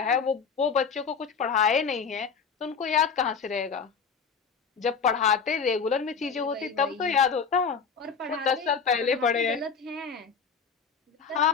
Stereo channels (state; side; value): quieter; right; 5.9 dB